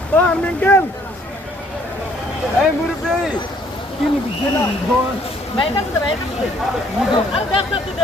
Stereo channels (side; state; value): both; normal; correlation 0.63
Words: ও আঙ্কেল। এই মুরব্বি কি নিবি না ভাই কাছে ভাই কাছে আর দেখ না তুই